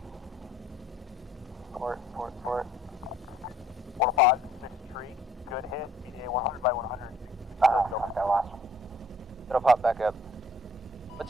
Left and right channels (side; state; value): both; normal; correlation 0.60